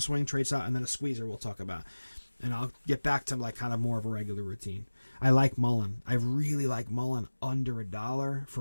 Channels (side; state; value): both; inverted; correlation -1.00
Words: swing trades out, and then a squeezer we'll talk about. And I'll get back to like kind of more of a regular routine. I like Mullen. I really like Mullen under $1